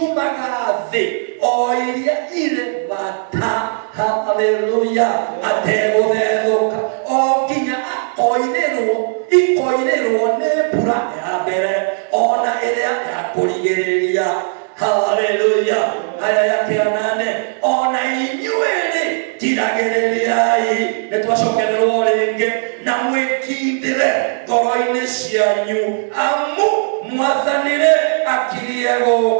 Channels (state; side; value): silent; left; digital silence